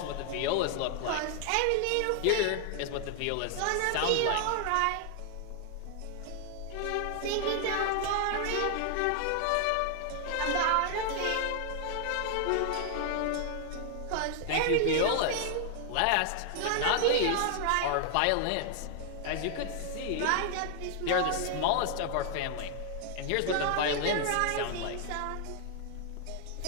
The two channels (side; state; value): both; different; correlation 0.00